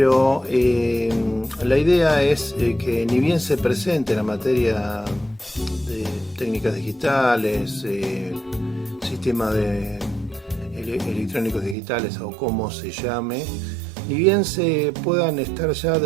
la idea es que ni bien se presente la materia de técnicas digitales, sistemas electrónicos digitales o como se llame, ni bien se puedan estar ya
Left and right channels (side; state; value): left; drops out; at 11.8 s